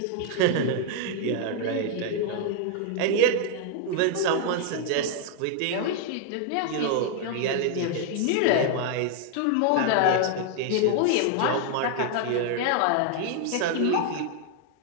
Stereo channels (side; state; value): both; different; correlation 0.00